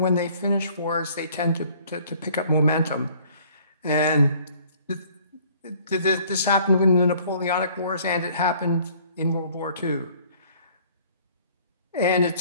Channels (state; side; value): inverted; both; correlation -0.57